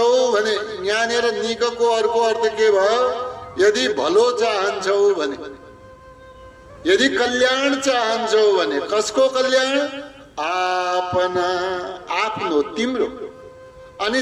भने, यहाँनिर निकको अर्को अर्थ के भयो? यदि भलो चाहन्छौ भने, यदि कल्याण चाहन्छौ भने। कसको कल्याण? आपना, आफ्नो, तिम्रो।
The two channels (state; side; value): identical; both; correlation 1.00